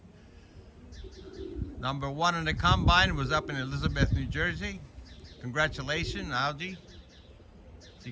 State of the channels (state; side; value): identical; both; correlation 1.00